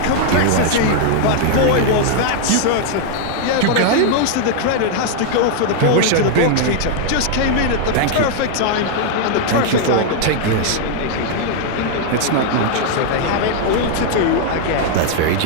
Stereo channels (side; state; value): both; different; correlation 0.00